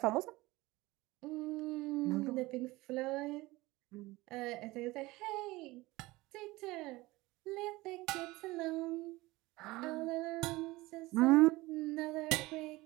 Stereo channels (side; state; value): left; quieter; 20.4 dB